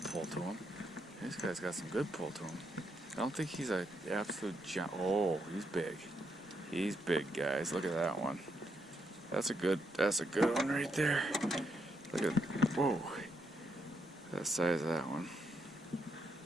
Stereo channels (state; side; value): normal; both; correlation 0.78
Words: pull to him. This guy's got some good pull to him. I don't think he's an absolute giant. Oh, he's big. He's big, guys. Look at that one. That's a good one right there. Look at, whoa. That size of that one.